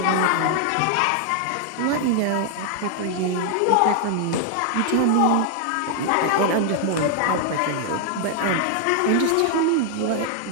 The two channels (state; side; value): different; both; correlation 0.00